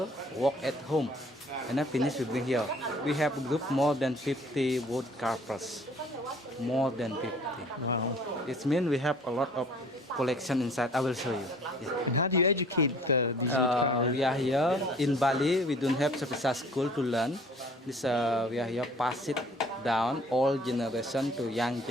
work at home. And then finish we bring here. We have a group more than 50 wood carvers. More than 50. Wow. It means we have a lot of collection inside. I will show you. Yeah. And how do you educate these people? We are here in Bali. We don't have special school to learn. This we are here pass it down old generation to young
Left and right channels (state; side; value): normal; both; correlation 0.53